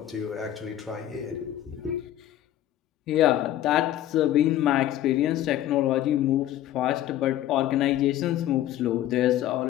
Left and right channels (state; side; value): quieter; right; 12.7 dB